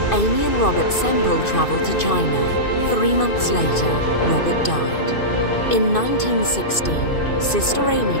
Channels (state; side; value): late; right; 2.5 ms